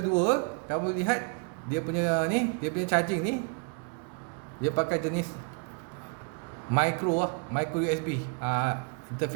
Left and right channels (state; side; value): quieter; left; 37.4 dB